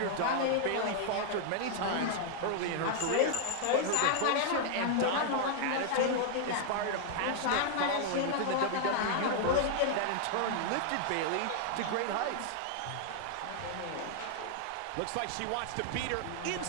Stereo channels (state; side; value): different; both; correlation 0.00